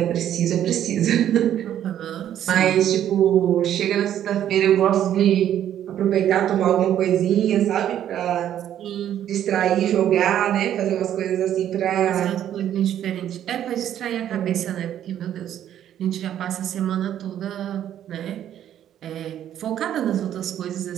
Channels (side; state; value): left; quieter; 10.8 dB